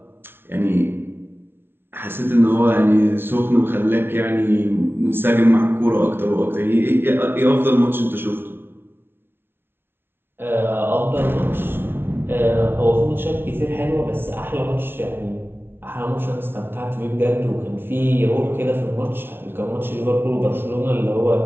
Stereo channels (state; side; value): late; left; 0.11 ms